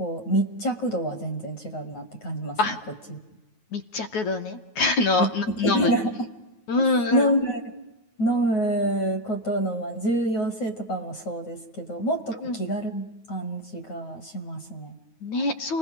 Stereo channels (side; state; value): right; late; 9.3 ms